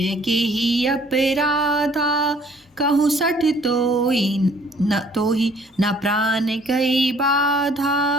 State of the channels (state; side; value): normal; both; correlation 0.58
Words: के ही अपराधा, कहूँ सठ तो ही न प्राण कई